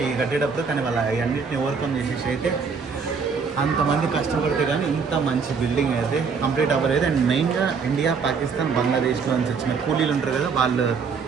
ఈ కట్టేటప్పుడు. కానీ వాళ్ళ అన్నింటిని ఓవర్కమ్ చేసేసి అయితే అంతమంది కష్టపడితే కానీ ఇంత మంచి బిల్డింగ్ అయితే కంప్లీట్ అవ్వలేదు. అండ్ మెయిన్గా ఇండియా, పాకిస్తాన్, బంగ్లాదేశ్లో నుంచి వచ్చిన కూలీలు ఉంటారు కదా, వాళ్ళు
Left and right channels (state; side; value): quieter; left; 5.5 dB